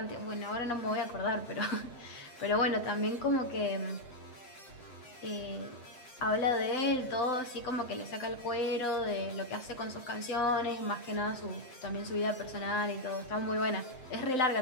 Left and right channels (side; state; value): right; late; 7.7 ms